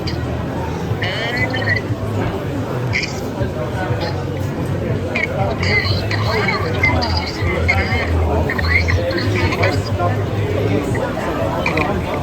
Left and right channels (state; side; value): identical; both; correlation 1.00